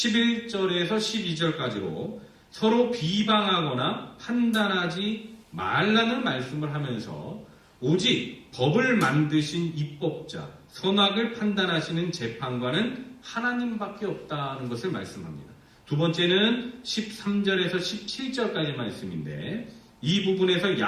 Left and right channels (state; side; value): identical; both; correlation 1.00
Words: 12절까지로 서로 비방하거나 판단하지 말라는 말씀을 하면서 오직 법을 만드신 입법자, 선악을 판단하시는 재판관은 하나님밖에 없다는 것을 말씀합니다. 두 번째는 13절에서 17절까지 말씀인데, 이 부분에서